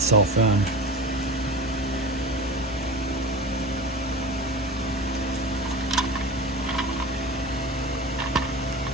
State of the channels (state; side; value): normal; both; correlation 0.32